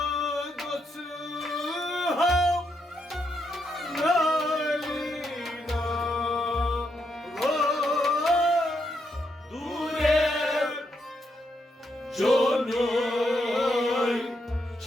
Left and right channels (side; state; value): both; normal; correlation 0.80